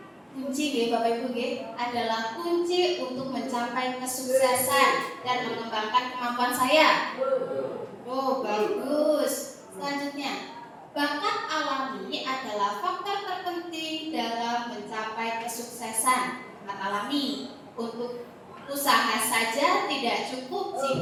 Bapak Ibu adalah kunci untuk mencapai kesuksesan dan mengembangkan kemampuan saya. Oh, bagus. Selanjutnya, bakat alami adalah faktor terpenting dalam mencapai kesuksesan. Bakat alami untuk usaha saja tidak cukup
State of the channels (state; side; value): identical; both; correlation 1.00